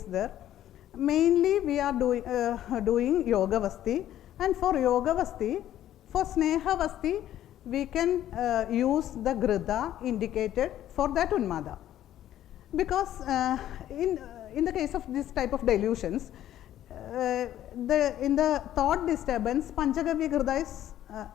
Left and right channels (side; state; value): right; quieter; 12.2 dB